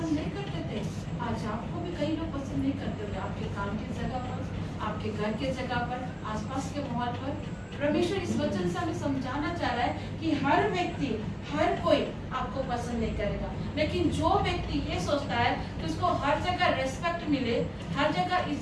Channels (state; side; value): identical; both; correlation 1.00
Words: नहीं करते थे। आज आपको भी कई लोग पसंद नहीं करते थे, आपके काम की जगह पर, आपके घर के जगह पर, आसपास के माहौल पर। परमेश्वर इस वचन से हमें समझाना चाह रहा है कि हर व्यक्ति, हर कोई आपको पसंद नहीं करेगा, लेकिन जो व्यक्ति ये सोचता है कि उसको हर जगह रेस्पेक्ट मिले, हर जगह